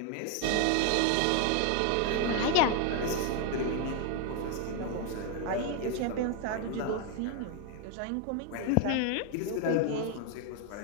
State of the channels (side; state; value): both; different; correlation 0.01